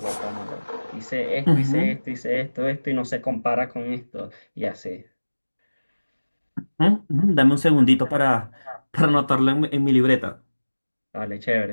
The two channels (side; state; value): both; inverted; correlation -1.00